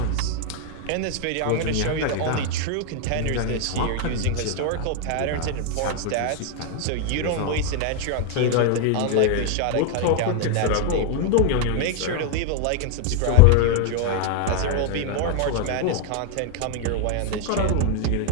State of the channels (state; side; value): different; both; correlation 0.01